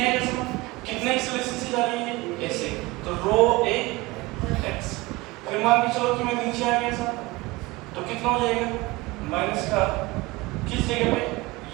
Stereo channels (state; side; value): quieter; left; 21.4 dB